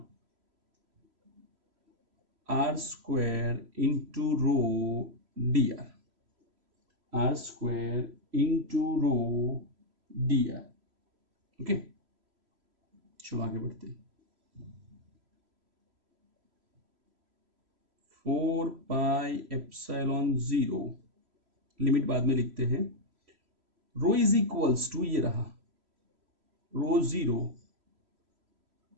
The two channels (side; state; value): left; late; 3.0 ms